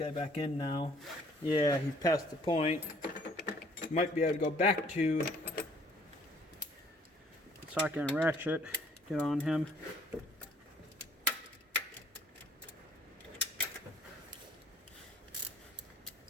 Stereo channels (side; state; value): both; normal; correlation 0.59